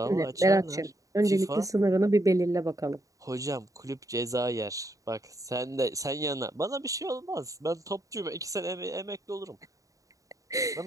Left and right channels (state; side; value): late; left; 0.16 ms